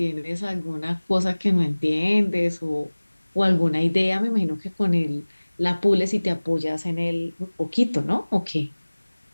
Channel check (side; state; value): both; inverted; correlation -1.00